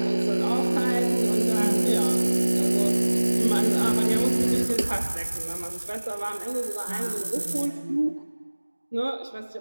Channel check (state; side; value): inverted; both; correlation -1.00